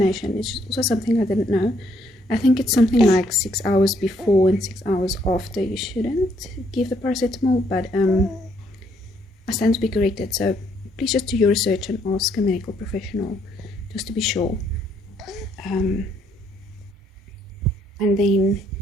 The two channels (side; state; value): both; normal; correlation 0.70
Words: It's just also something I didn't know. I think it's something like 6 hours before and 6 hours after you shouldn't give the paracetamol, but I stand to be corrected. So please just do your research and ask a medical professional just to be sure. And then